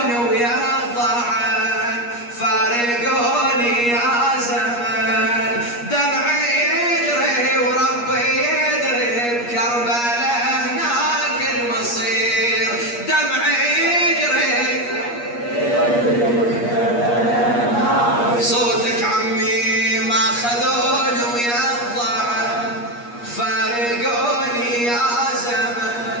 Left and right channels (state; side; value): late; right; 8.4 ms